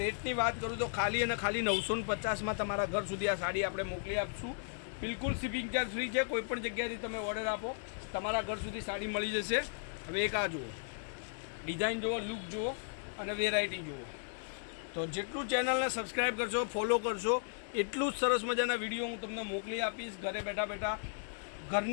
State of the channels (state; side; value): silent; right; digital silence